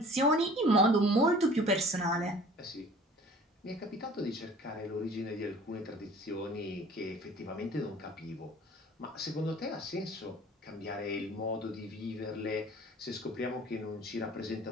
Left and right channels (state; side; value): normal; both; correlation 0.48